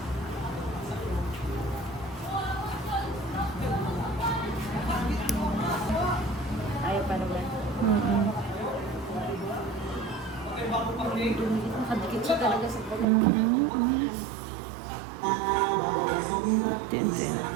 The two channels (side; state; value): left; drops out; at 13.1 s